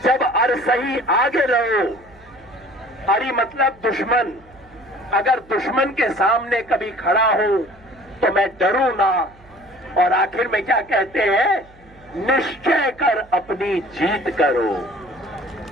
जब अर सही आगे रहो। अरी मतलब दुश्मन, अगर दुश्मन के सामने कभी खड़ा हो तो मैं डरू ना। और आखिर में क्या कहते हैं, निश्चय कर अपनी जीत करो।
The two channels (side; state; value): right; noise; hum, 26 dB below the sound